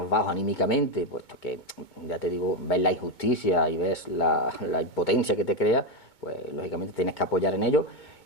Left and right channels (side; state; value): right; late; 2.2 ms